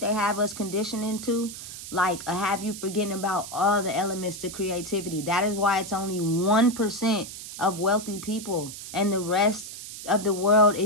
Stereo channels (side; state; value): right; noise; hiss, 11 dB below the sound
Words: they have us conditioned into, like, have you forgetting about all the elements to creativity. That is why it's only 1% of wealthy people, and the rest of the world